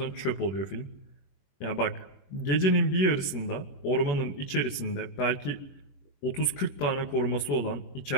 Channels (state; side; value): late; right; 21 ms